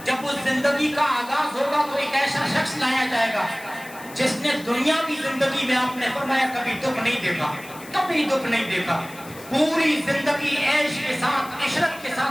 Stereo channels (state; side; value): noise; left; hiss, 19 dB below the sound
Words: جب اس زندگی کا آغاز ہوگا تو ایک ایسا شخص لایا جائے گا جس نے دنیاوی زندگی میں، آپ نے فرمایا کبھی دکھ نہیں دیکھا، کبھی دکھ نہیں دیکھا، پوری زندگی عیش کے ساتھ، عشرت کے